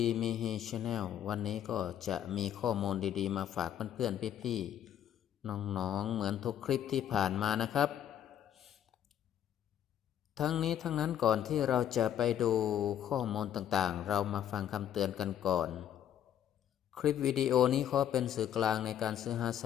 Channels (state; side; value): quieter; right; 10.3 dB